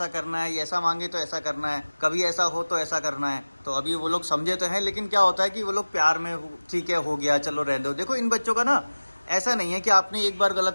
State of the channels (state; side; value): inverted; both; correlation -1.00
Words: करना है, ये ऐसा मांगे तो ऐसा करना है, कभी ऐसा हो तो ऐसा करना है। तो अभी वो लोग समझे तो हैं, लेकिन क्या होता है कि वो लोग प्यार में ठीक है, हो गया, चलो रहने दो। देखो इन बच्चों का ना ऐसा नहीं है कि आपने एक बार